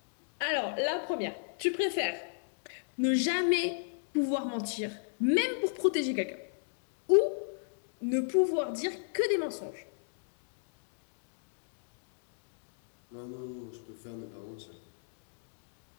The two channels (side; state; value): right; silent; digital silence